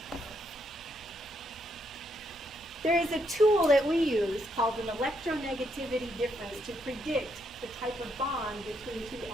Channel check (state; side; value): normal; both; correlation 0.76